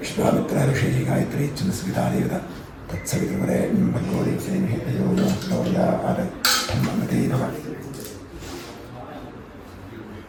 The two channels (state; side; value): identical; both; correlation 1.00